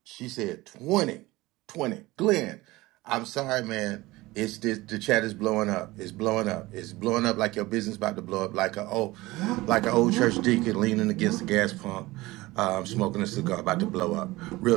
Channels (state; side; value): quieter; left; 19.7 dB